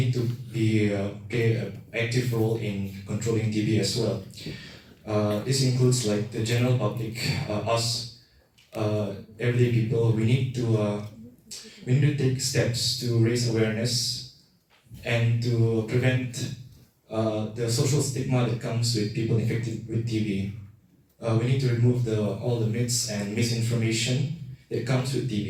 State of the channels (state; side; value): identical; both; correlation 1.00